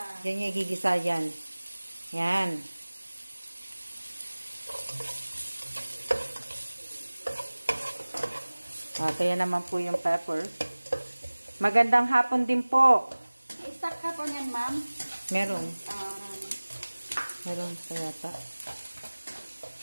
Diyan niya igigisa yan. Yan. Ito yan naman po yung pepper. Magandang hapon din po. May stock ka po niyan, ma'am? Meron. Meron pa yata.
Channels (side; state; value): both; inverted; correlation -1.00